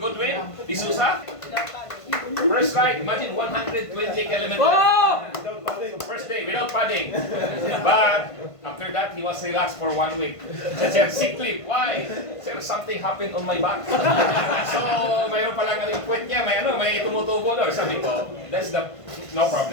Goodwin, Isusa. First ride, imagine 120 kilometers. First day without padding. But after that, he was relaxed for 1 week. Sir, sick leave. Why? Sir, something happened on my back. So, mayroon pa lang yung kwet niya, may tumutubo daw. Sabi ko, that's the, no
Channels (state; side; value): late; right; 1.5 ms